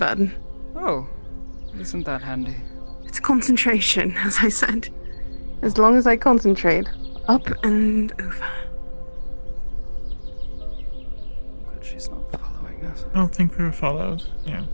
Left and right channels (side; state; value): both; inverted; correlation -1.00